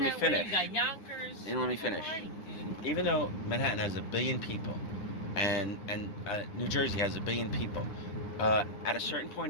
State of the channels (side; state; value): right; late; 9.8 ms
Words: me finish. You got Yonkers. You didn't let me finish. Even though Manhattan has 1 billion people, and New Jersey has 1 billion people, at a certain